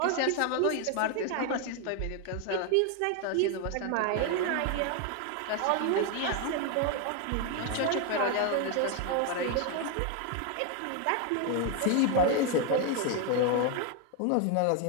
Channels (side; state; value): both; different; correlation 0.01